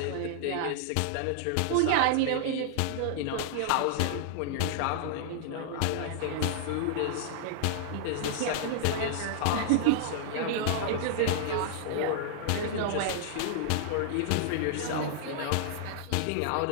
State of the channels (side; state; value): both; different; correlation -0.01